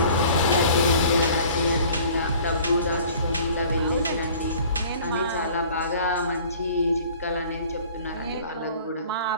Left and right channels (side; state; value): both; inverted; correlation -0.49